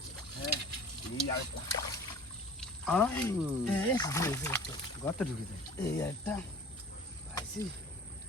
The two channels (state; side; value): normal; both; correlation 0.42